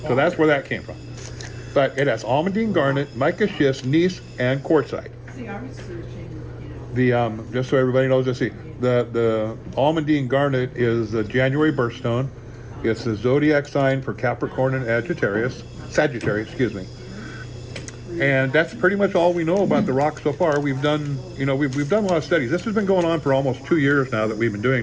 So that's where that came from. But it has almandine garnet, mica schist, gneiss, and quartzite. Just so everybody knows, let's see. The almandine garnet is the January birthstone. It's the zodiac sign for Capricorn and Sagittarius, excuse me. And that's pretty much all we know about the rock so far. We've done a lot of studies. This has been going on for almost 2 years now that we've been doing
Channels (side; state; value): both; identical; correlation 1.00